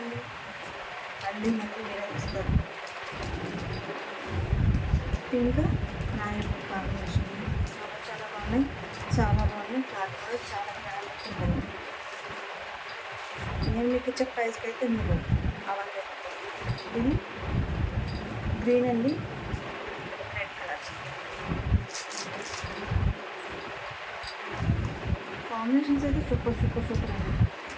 మళ్ళీ వేరే ఇస్తారు. పింక్ మ్యారీడ్ కాంబినేషన్ చాలా బాగున్నాయి, చాలా బాగున్నాయి. క్లాత్ కూడా చాలా గ్రాండ్ ఉంటుంది. నేను మీకు ఇచ్చే ప్రైస్కి అయితే మీరు అవైలబుల్. ఇది గ్రీన్ అండి, రెడ్ కలర్ కాంబినేషన్స్ అయితే సూపర్ సూపర్ సూపర్ అండి.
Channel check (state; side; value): identical; both; correlation 1.00